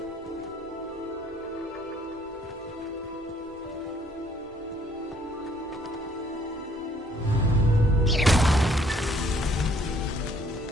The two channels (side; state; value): both; normal; correlation 0.63